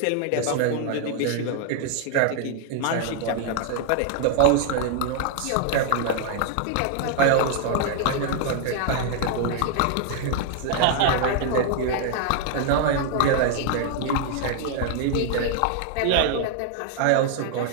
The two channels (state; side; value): different; both; correlation 0.00